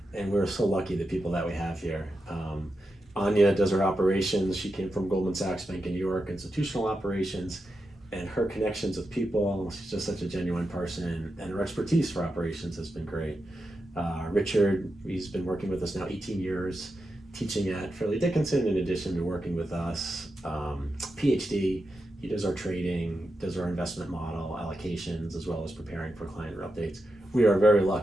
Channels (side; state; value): both; normal; correlation 0.88